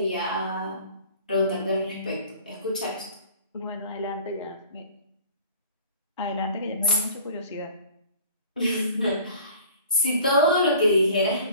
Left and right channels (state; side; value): inverted; both; correlation -0.47